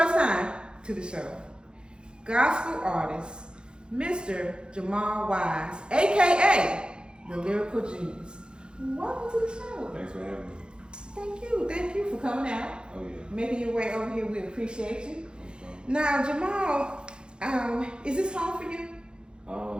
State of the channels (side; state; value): left; late; 0.050 ms